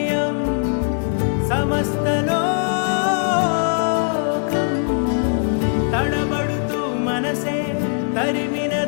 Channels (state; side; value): silent; right; digital silence